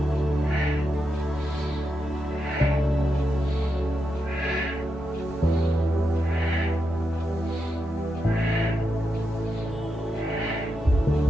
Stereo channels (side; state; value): both; normal; correlation 0.86